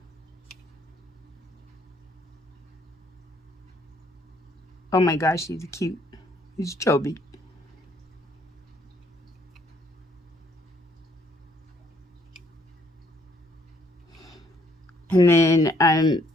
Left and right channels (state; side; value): normal; both; correlation 0.66